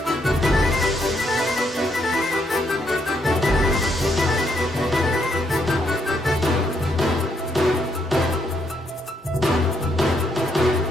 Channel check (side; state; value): both; normal; correlation 0.74